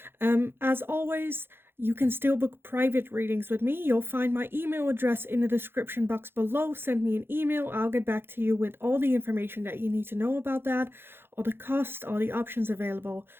As always, you can still book private readings with me. You'll find my email address in the description box below. Send me an email. I'll get back to you with all the information that you need to know about that, all the costs, all the options available,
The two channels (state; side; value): late; left; 0.11 ms